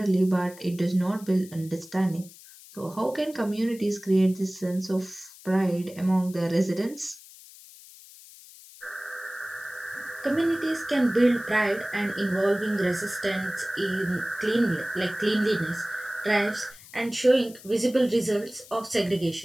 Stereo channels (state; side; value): noise; left; hiss, 20 dB below the sound